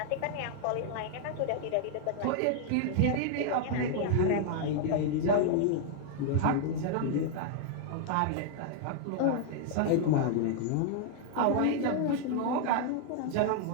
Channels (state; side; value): different; both; correlation -0.01